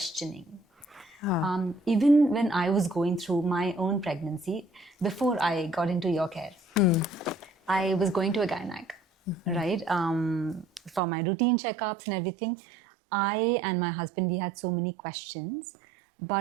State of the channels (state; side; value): drops out; left; at 11.0 s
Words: Even when I was going through my own pregnancy, before I got into your care, I was going to a gynec, right? For my routine checkups and everything. I and my husband, we had so many questions,